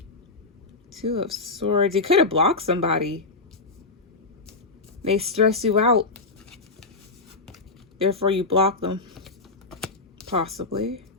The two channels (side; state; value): right; quieter; 3.6 dB